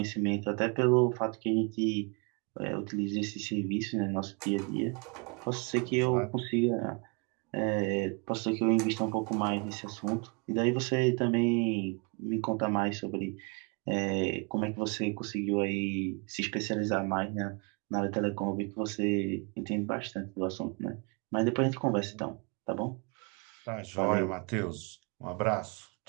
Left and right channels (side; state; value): left; quieter; 33.4 dB